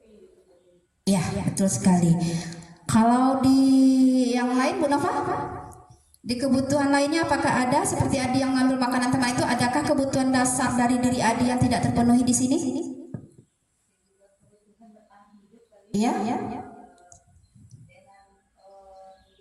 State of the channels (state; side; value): identical; both; correlation 1.00